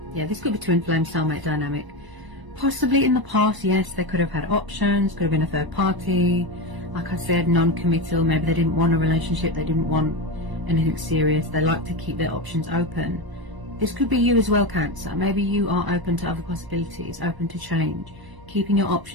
Yeah, this could be twin flame soulmate dynamic. Possibly in the past, yes, they could have had options, could have been a third party. Like I said, non-committal. Maybe they didn't want a relationship, they didn't want anything serious. They like to keep their options open. This could be you as well, Cancer. Maybe you are open to other possibilities, open to change, keeping your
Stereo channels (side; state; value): left; late; 1.0 ms